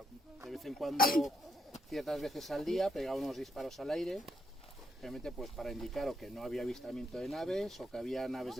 De vez en cuando, ciertas veces al día, pegaba unos disparos al aire, realmente pues para indicar o que no había avistamiento de naves, o que había naves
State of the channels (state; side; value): normal; both; correlation 0.78